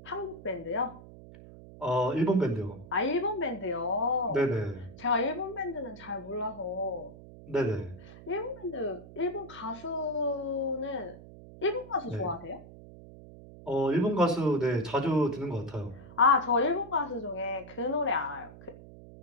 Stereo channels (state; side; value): noise; right; hum, 17 dB below the sound